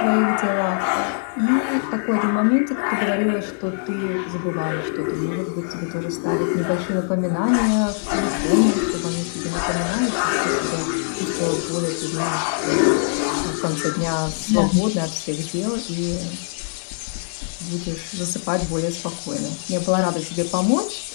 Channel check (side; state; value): right; silent; digital silence